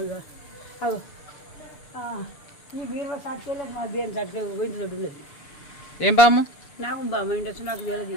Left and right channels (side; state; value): right; late; 7.0 ms